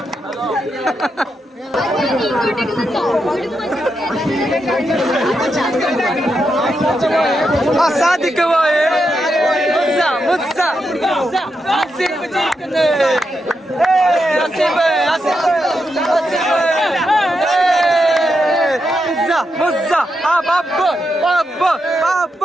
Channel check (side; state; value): both; normal; correlation 0.84